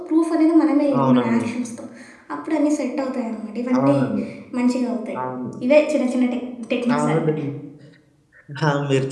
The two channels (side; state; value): both; identical; correlation 1.00